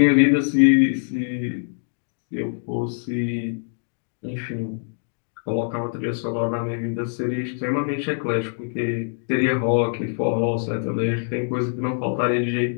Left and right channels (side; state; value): right; silent; digital silence